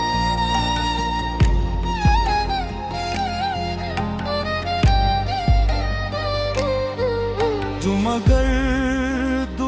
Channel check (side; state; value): both; identical; correlation 1.00